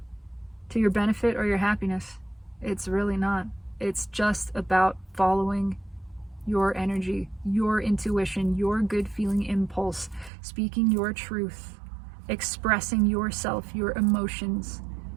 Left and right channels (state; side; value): drops out; left; at 10.3 s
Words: to your benefit, or your happiness. It's really not. It's just about following your energy, your intuition, your good feeling impulse, speaking your truth, expressing yourself, your emotions,